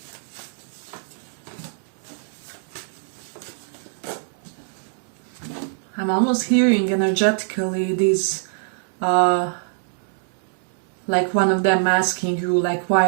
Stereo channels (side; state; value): left; silent; digital silence